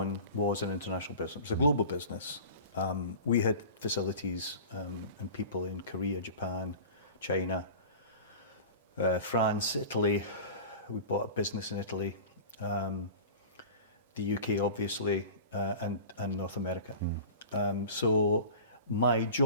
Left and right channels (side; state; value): both; inverted; correlation -0.37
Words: was an international business. It was a global business. We had facilities and people in Korea, Japan, China, France, Italy. We bought a business in Italy, the UK, obviously, and North America. So my